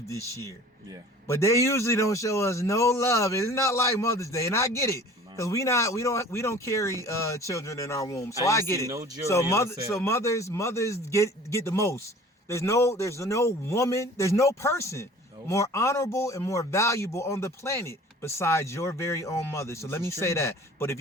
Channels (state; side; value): normal; both; correlation 0.46